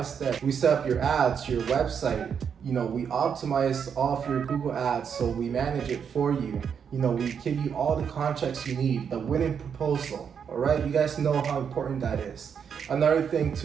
step. We set up your ads, your website, we optimize all of your Google ads, so we manage it for you. We give you all the contracts you need, the winning proposal. All right, you guys know how important that is. Another thing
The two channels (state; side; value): quieter; left; 7.3 dB